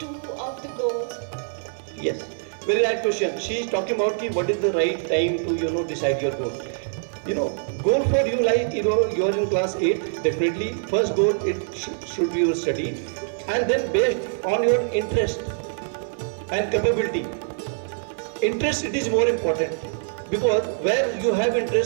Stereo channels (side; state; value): left; silent; digital silence